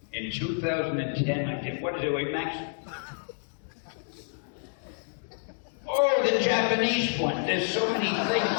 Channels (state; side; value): silent; right; 59 dB below the other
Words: In 2010, I did, what is it, wait, Max? Oh, the Japanese one. There's so many